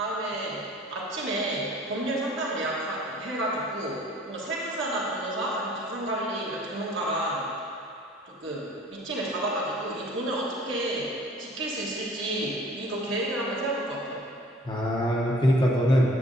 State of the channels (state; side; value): normal; both; correlation 0.50